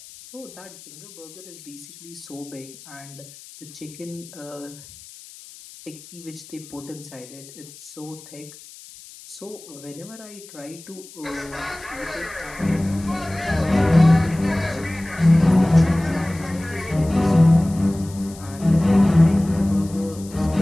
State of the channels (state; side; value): noise; left; hiss, 19 dB below the sound